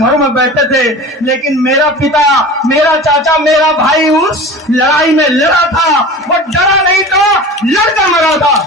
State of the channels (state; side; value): normal; both; correlation 0.36